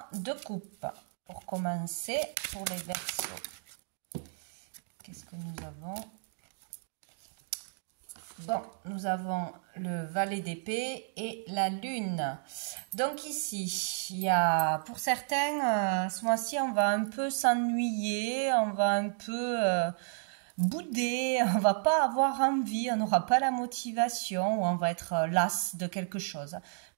de coupe pour commencer pour les Verseaux. Qu'est-ce que nous avons? Bon, nous avons le valet d'épée et la lune. Donc ici, il y a pour certains, ce mois-ci, on va un peu s'ennuyer, on va un peu bouder, on va pas avoir envie, on n'aura pas la motivation, ou on va être las de quelque chose.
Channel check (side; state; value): left; silent; digital silence